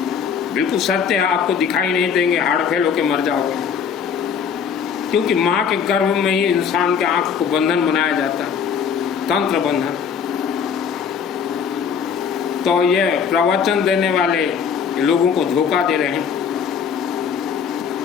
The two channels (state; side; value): quieter; right; 7.0 dB